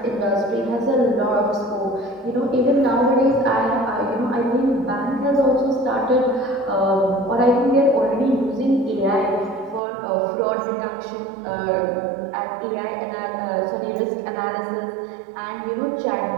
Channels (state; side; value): drops out; left; at 9.8 s